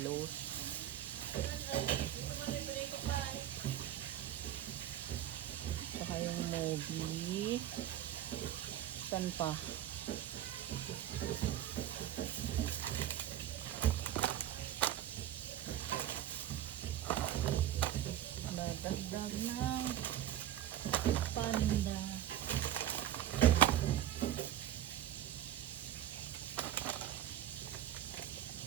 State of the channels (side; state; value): left; quieter; 11.8 dB